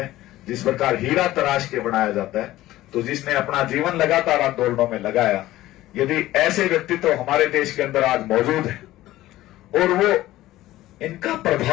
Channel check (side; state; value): right; quieter; 15.8 dB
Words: जिस प्रकार हीरा तराश के बनाया जाता है, तो जिसने अपना जीवन लगातार आंदोलनों में लगाया, यदि ऐसे व्यक्तित्व हमारे देश के अंदर आज मौजूद है और वो इनका